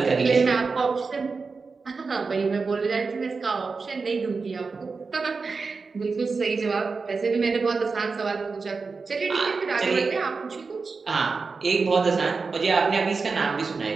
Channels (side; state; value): left; quieter; 4.5 dB